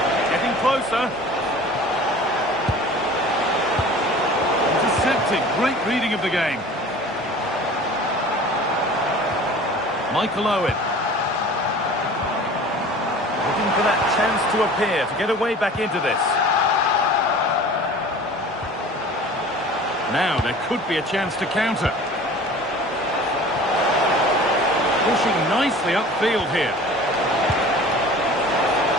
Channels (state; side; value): normal; both; correlation 0.43